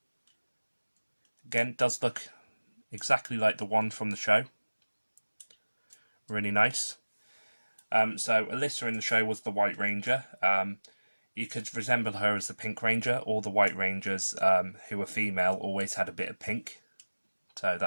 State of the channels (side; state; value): both; inverted; correlation -1.00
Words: Again, does look exactly like the one from the show. Really nice. So Alyssa in the show was the White Ranger. You could resemble her as the Pink Ranger. All the White Rangers who were female always had a bit of pink so